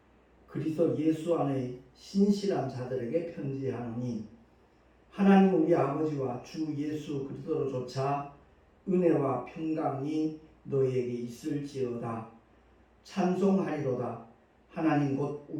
그리스도 예수 안의 신실한 자들에게 편지하노니, 하나님 우리 아버지와 주 예수 그리스도로조차 은혜와 평강이 너희에게 있을지어다. 찬송하리로다. 하나님 곧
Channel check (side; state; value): both; identical; correlation 1.00